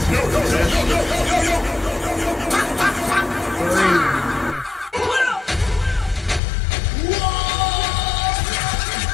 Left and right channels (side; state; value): right; drops out; at 6.4 s